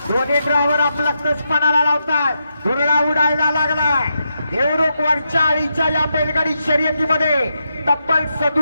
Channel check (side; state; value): both; inverted; correlation -0.84